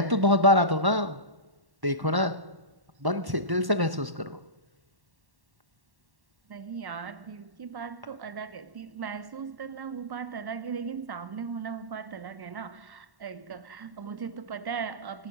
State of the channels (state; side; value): late; left; 1.1 ms